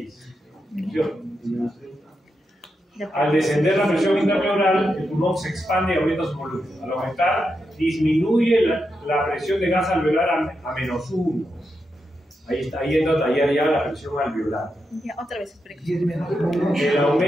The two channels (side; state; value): both; normal; correlation 0.86